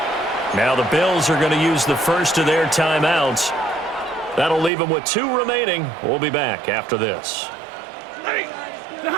Now the Bills are going to use the first of their timeouts. That'll leave them with 2 remaining. We'll be back after this.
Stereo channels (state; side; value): drops out; left; at 4.7 s